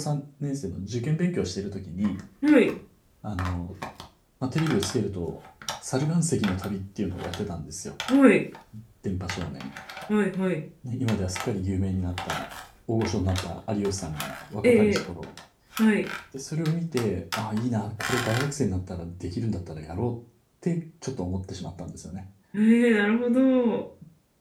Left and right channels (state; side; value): identical; both; correlation 1.00